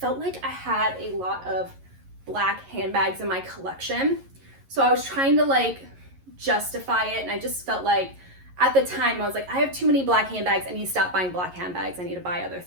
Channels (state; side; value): late; left; 11 ms